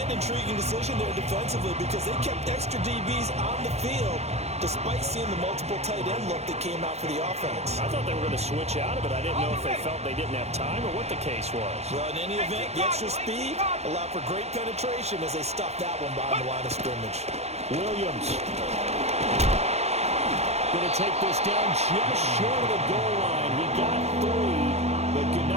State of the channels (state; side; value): late; left; 0.31 ms